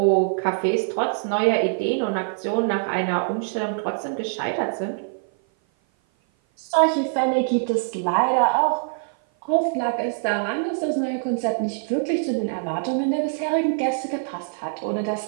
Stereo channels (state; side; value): silent; left; 56 dB below the other